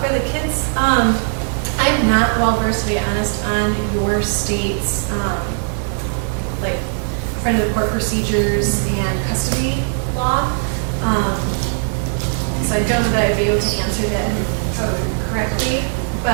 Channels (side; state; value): left; silent; digital silence